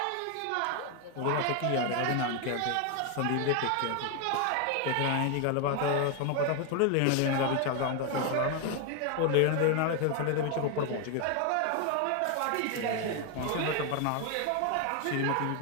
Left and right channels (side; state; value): both; different; correlation 0.01